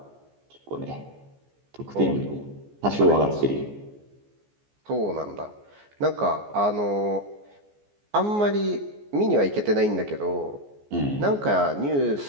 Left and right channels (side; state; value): left; late; 14 ms